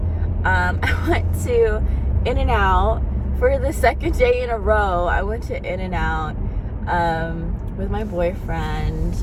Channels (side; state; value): both; identical; correlation 1.00